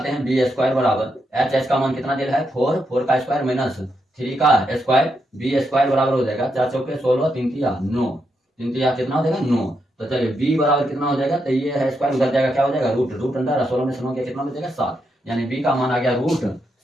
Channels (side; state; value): both; normal; correlation 0.82